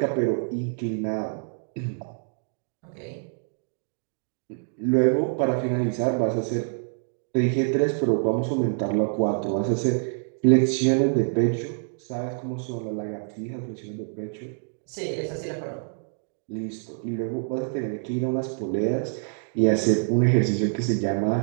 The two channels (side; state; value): left; silent; digital silence